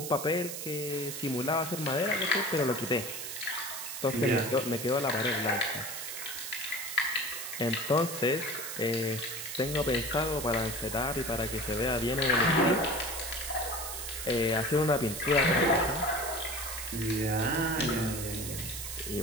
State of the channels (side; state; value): right; noise; hiss, 7 dB below the sound